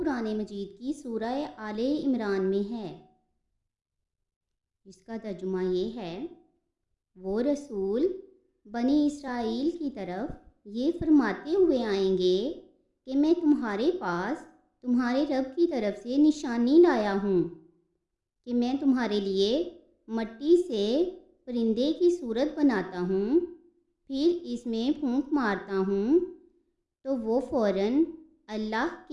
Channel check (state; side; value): identical; both; correlation 1.00